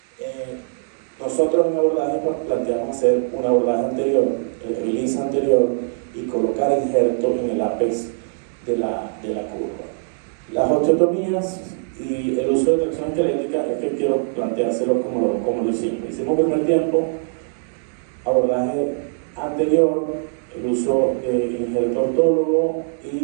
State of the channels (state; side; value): silent; left; digital silence